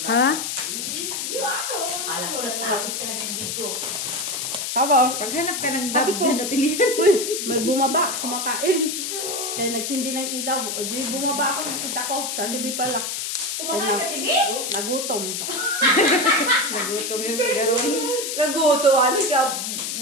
Ha? Alam ko natapos ka na ng video. Kabo, Paghanap ka ng Sabi dab ko. dyan at ilihan. may bumaba, kumakain. Kaya nagsindi ng ilaw. O di bumaba ako, nakita ko. Sa TV pala. Kumakain sa TV? Nagutom. Nagutom yung garon. Naguto. Ano siya?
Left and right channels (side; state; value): left; noise; hiss, 3 dB below the sound